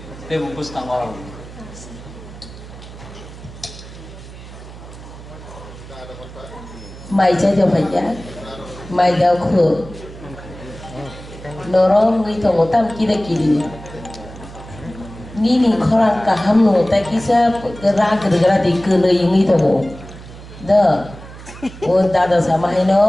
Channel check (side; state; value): right; noise; hum, 16 dB below the sound